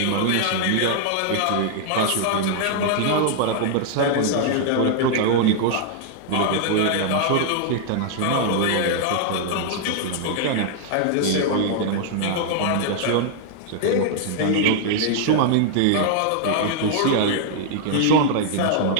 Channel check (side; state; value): both; different; correlation 0.00